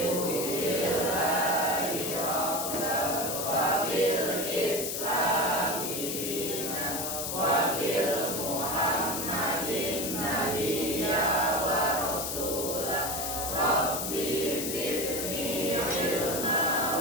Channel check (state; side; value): noise; left; hiss, 3 dB below the sound